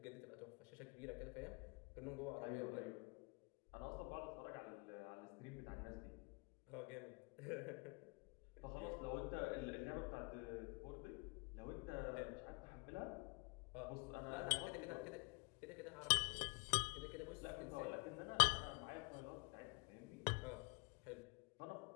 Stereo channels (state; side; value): quieter; right; 31.3 dB